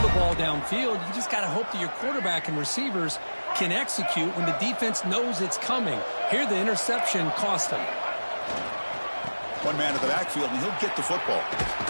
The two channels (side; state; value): both; inverted; correlation -1.00